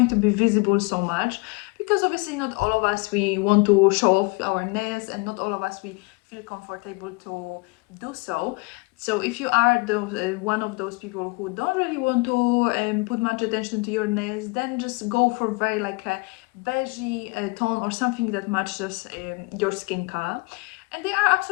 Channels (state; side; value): quieter; right; 28.0 dB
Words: to be visible so much, because obviously not all of us we want to show off our nails, and not all of us we feel comfortable to do so. So if you are one of those people who don't really want to put much attention to your nails, then just go for very like a beigey tone, or something that matches your skin color. And they are